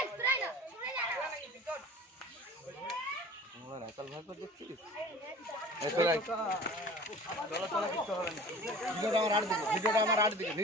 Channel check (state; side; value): normal; both; correlation 0.42